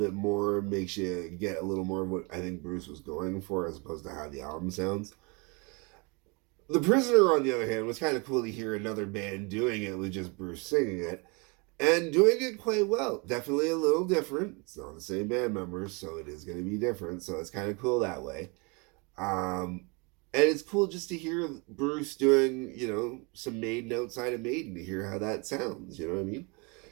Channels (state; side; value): quieter; left; 30.3 dB